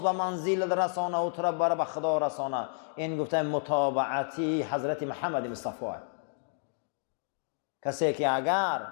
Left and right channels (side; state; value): right; silent; digital silence